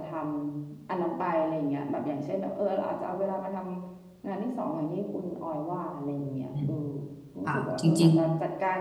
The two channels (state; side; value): identical; both; correlation 1.00